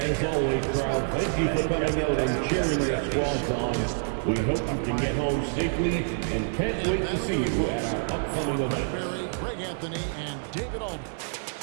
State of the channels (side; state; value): left; silent; digital silence